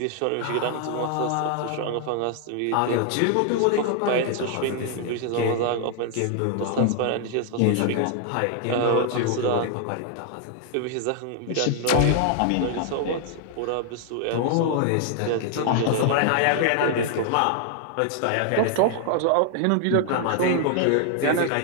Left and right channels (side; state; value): both; different; correlation 0.00